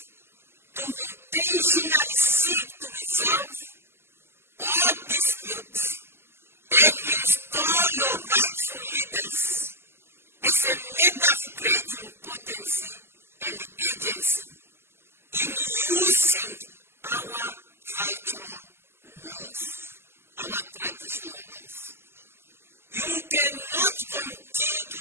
to intentionally seek to resolve all disputes and install your rightful leaders as a matter of great importance and agency in using our cultural laws, our traditional laws. You cannot continue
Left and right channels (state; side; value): late; left; 0.12 ms